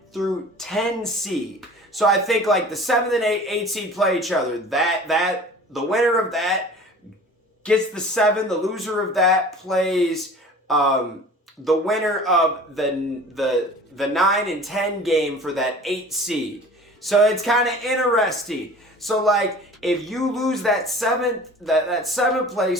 through 10 seed. So I think the 7th and 8 seed play each other. That the winner of that gets the 7. The loser of that plays the winner of the 9 and 10 game for that 8 seed. So it's kind of interesting. So if you lose that 7th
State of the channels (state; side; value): normal; both; correlation 0.43